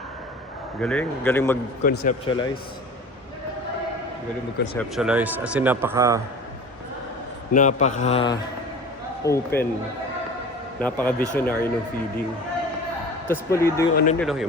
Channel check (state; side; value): normal; both; correlation 0.39